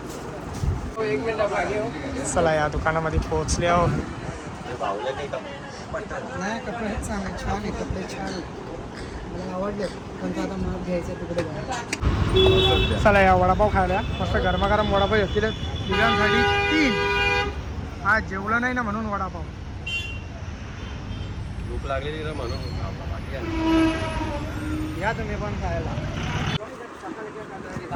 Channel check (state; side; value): identical; both; correlation 1.00